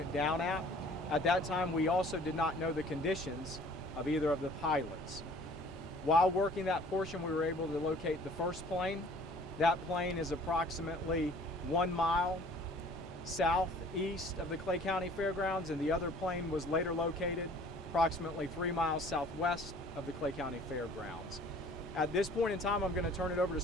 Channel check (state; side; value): normal; both; correlation 0.52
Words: down at. At that time, we also did not know the conditions of either of the pilots. While working that portion, we were able to locate the first plane. That plane is approximately 1 mile southeast of the Clay County Fairgrounds, and the other plane was later located approximately 3 miles southwest of the Clay County Fairgrounds. At this point in time, I'm going to turn it over to